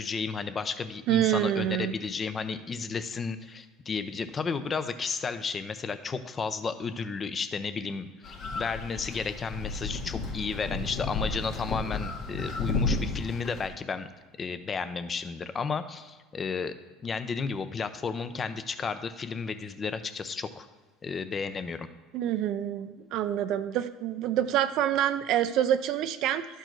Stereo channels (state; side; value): normal; both; correlation 0.51